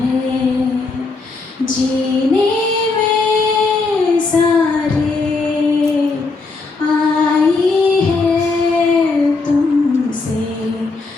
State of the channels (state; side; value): quieter; right; 3.9 dB